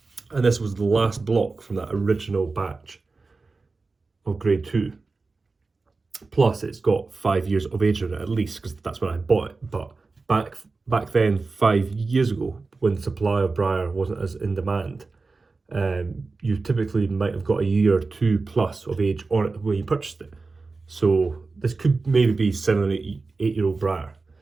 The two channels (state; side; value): quieter; left; 3.9 dB